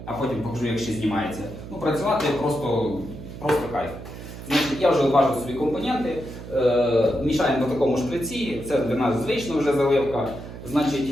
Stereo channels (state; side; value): noise; right; hum, 12 dB below the sound